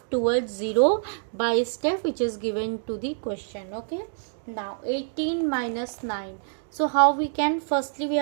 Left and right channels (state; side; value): silent; left; digital silence